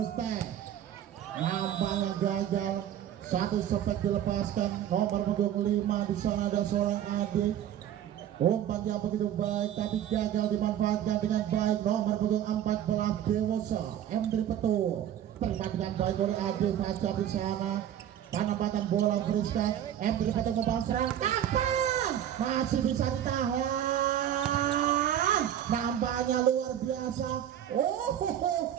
nampaknya gagal, satu sepet dilepaskan. Nomor punggung 5 di sana ada seorang adik, umpan yang begitu baik tapi gagal dimanfaatkan dengan baik. Nomor punggung 14 Dewosa, M3 Petung, terima dengan baik oleh adik Fajar di sana, penempatan bola Friska, M3 Petung kembali serang, masih bisa ditahan, nampaknya luar biasa.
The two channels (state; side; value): quieter; left; 10.7 dB